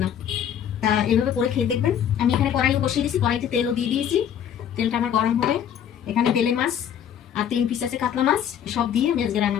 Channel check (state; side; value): quieter; right; 9.1 dB